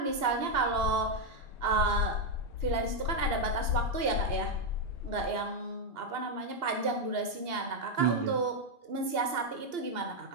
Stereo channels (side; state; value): left; late; 2.8 ms